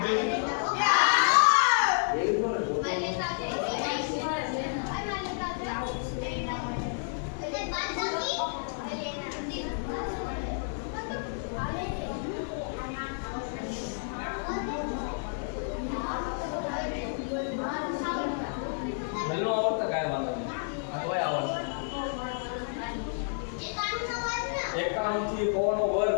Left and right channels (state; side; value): silent; right; digital silence